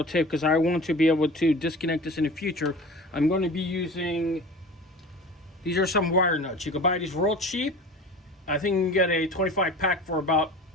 tape because I want to be able to disconnect this in the future, I'm going to be using, these are some wire nuts. You can buy these real cheap. I think you can get a 25 pack for about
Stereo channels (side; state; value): both; normal; correlation 0.37